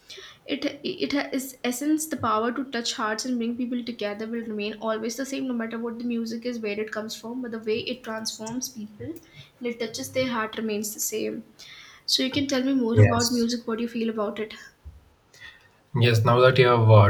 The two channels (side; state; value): both; identical; correlation 1.00